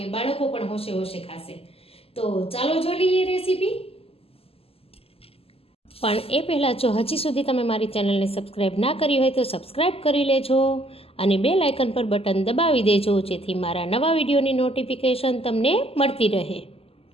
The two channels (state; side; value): late; right; 0.28 ms